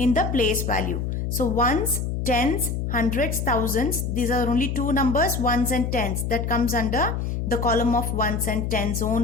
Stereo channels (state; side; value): noise; left; hum, 2 dB below the sound